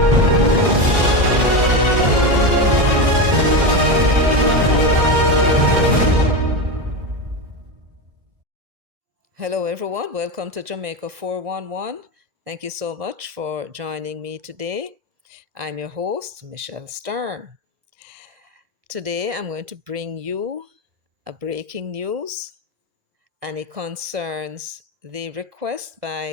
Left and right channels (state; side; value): late; left; 2.0 ms